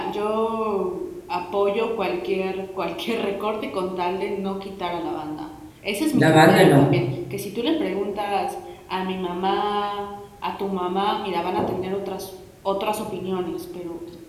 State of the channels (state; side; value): identical; both; correlation 1.00